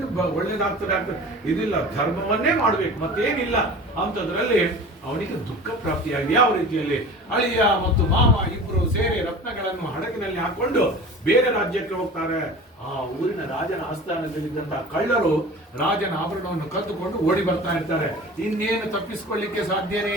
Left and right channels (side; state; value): both; normal; correlation 0.38